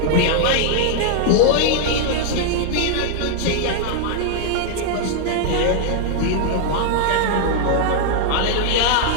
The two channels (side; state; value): both; different; correlation 0.00